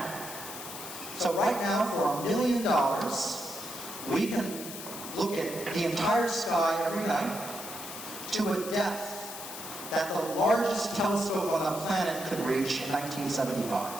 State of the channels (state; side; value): noise; left; hiss, 10 dB below the sound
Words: So right now, for $1 million, we can look at the entire sky every night to a depth that the largest telescope on the planet could reach in 1975.